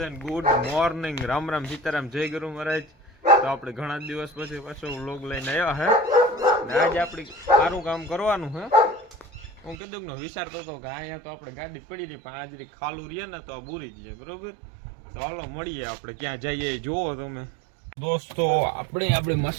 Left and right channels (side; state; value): left; drops out; at 9.8 s